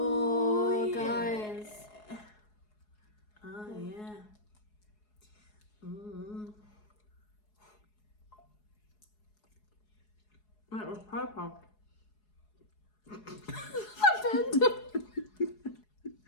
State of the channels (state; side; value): late; right; 4.7 ms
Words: yeah. guys. Oh yeah. That was purple.